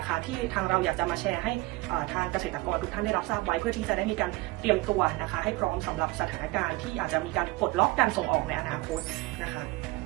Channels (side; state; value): left; quieter; 21.9 dB